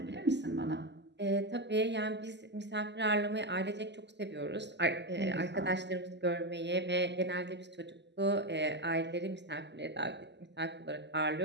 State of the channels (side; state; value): left; late; 0.51 ms